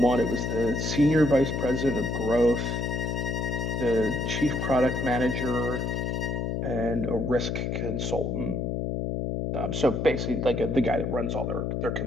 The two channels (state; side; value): noise; left; hum, 1 dB below the sound